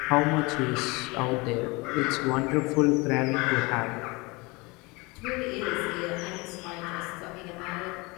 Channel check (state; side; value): quieter; right; 25.6 dB